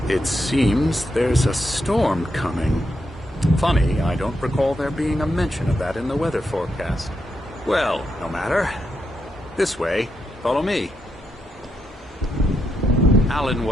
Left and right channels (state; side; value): normal; both; correlation 0.82